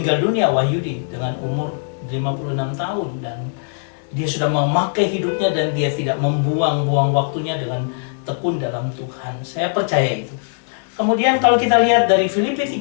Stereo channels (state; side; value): silent; right; digital silence